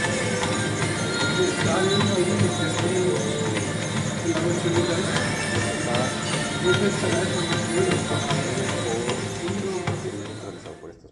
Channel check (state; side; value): identical; both; correlation 1.00